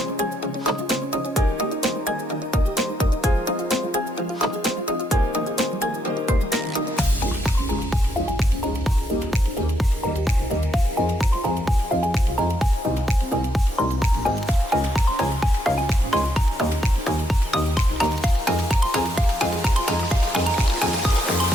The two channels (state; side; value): normal; both; correlation 0.76